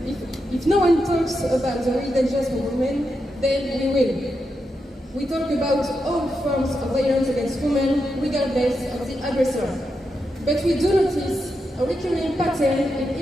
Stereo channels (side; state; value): both; normal; correlation 0.86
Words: If no one talks about the real dangers for women, then we will. We talk about all forms of violence against women, regardless of the aggressor. But we do notice a recurring pattern in